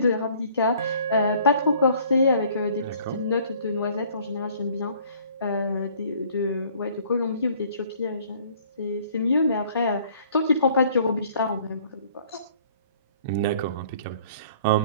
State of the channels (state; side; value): inverted; both; correlation -0.56